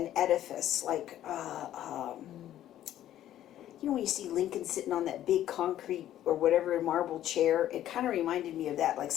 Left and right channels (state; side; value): quieter; right; 12.3 dB